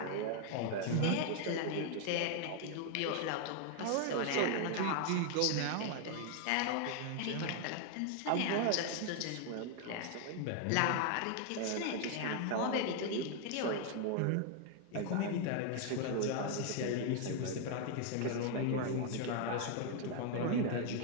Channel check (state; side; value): different; both; correlation 0.00